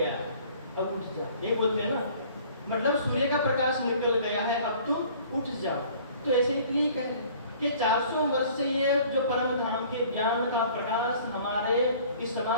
अब उठ जा, ये बोलते हैं ना, मतलब सूर्य का प्रकाश निकल गया है, अब तुम उठ जाओ। तो ऐसे ही यही कह रहे कि 400 वर्ष से ये जो परम धाम के ज्ञान का प्रकाश हमारे इस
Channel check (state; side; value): inverted; both; correlation -0.52